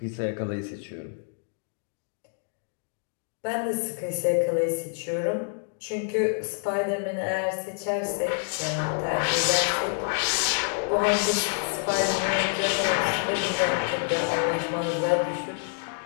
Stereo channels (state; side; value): silent; right; digital silence